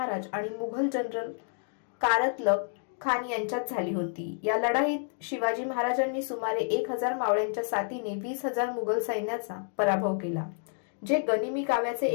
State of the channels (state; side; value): silent; right; digital silence